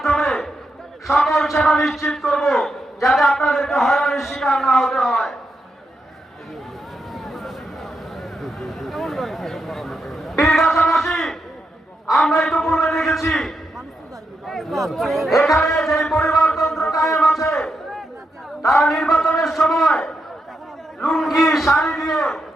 সকল সেবা নিশ্চিত করব, যাতে আপনাদেরকে হয়রানির শিকার না হতে হয়। পীরগাছাবাসী, আমরা ইতিপূর্বে দেখেছি এখানে যে পরিবারতন্ত্র কায়েম আছে, তারা নির্বাচনের সময় লুঙ্গি শাড়ি দিয়ে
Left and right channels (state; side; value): normal; both; correlation 0.84